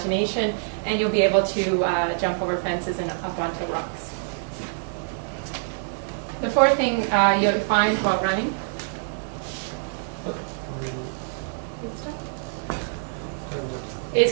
and you'll be able to jump over fences and up onto rocks. The fourth thing you'll find while running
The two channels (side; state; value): left; silent; digital silence